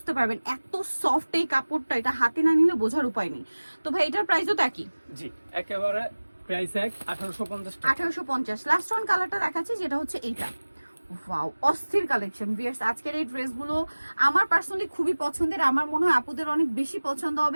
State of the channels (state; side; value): inverted; both; correlation -1.00